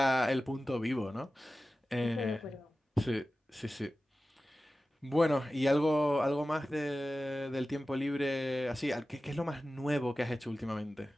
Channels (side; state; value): both; normal; correlation 0.95